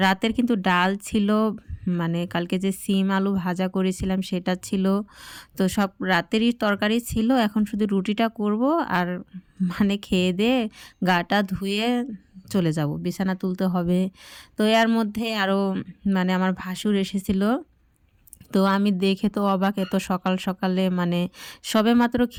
রাতের কিন্তু ডাল ছিল, মানে কালকে যে সিম আলু ভাজা করেছিলাম সেটা ছিল। তো সব রাতেরই তরকারি ছিল। এখন শুধু রুটিটা করব আর মানে খেয়ে দিয়ে গাটা ধুয়ে চলে যাব, বিছানা তুলতে হবে। তো এর মধ্যে আরও মানে আমার ভাসুর এসেছিলো। তো আমি দেখে তো অবাক, এত সকাল সকালে মানে সবেমাত্র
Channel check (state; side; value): identical; both; correlation 1.00